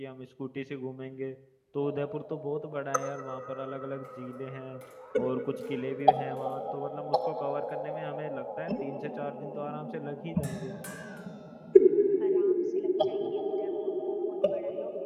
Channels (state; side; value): identical; both; correlation 1.00